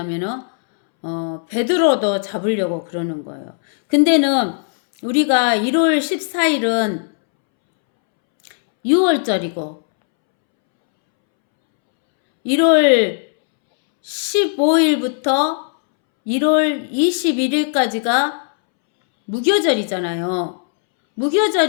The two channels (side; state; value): right; silent; 66 dB below the other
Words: 베드로도 잡으려고 그러는 거예요. 근데는 우리가 1월 14일은 6월절이고 1월 15일부터 1월 21일까지가 무교절이잖아요.